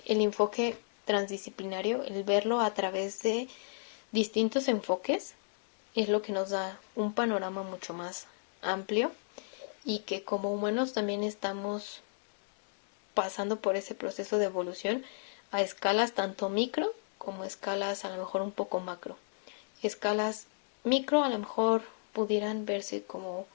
el enfoque transdisciplinario, el verlo a través de distintos enfoques, es lo que nos da un panorama mucho más amplio, y que como humanos también estamos pasando por ese proceso de evolución a escalas tanto micro como escalas a lo mejor un poco macro. Escalas micro a lo mejor pudieran verse como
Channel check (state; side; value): silent; right; digital silence